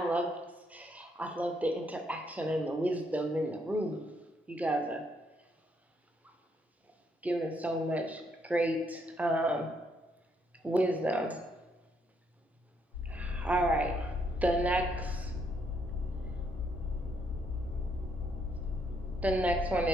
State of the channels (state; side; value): normal; both; correlation 0.73